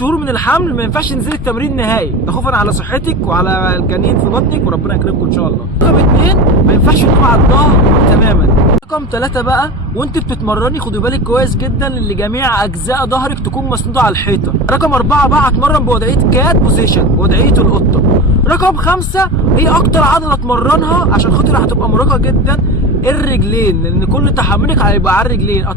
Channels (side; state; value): both; normal; correlation 0.27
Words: من الحمل ما ينفعش تنزلي التمرين نهائي، ده خوفا على صحتك وعلى الجنين في بطنك وربنا يكرمكم ان شاء الله. رقم 2، ما ينفعش تنام على الظهر تماما. رقم 3 بقى، وانت بتتمرني خدي بالك كويس جدا ان جميع اجزاء ظهرك تكون مسنوده على الحيطه. رقم 4 بقى، هتمرن بوضعيه كات بوزيشن، بوضعيه القطه. رقم 5، هي اكتر عضله اتمرنها عشان خاطر هتبقى مرهقه جدا، الرجلين، لان كل تحملك هيبقى على الرجلين.